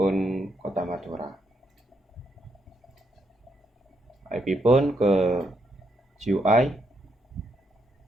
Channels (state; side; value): normal; both; correlation 0.78